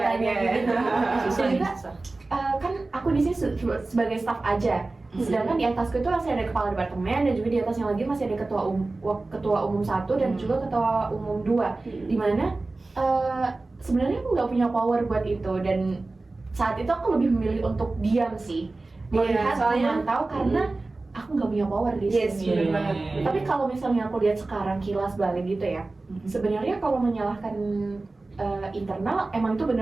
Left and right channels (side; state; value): left; quieter; 3.3 dB